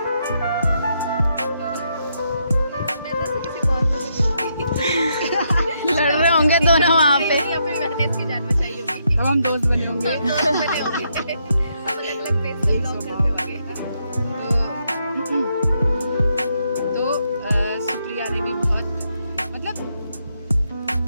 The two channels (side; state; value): both; inverted; correlation -0.78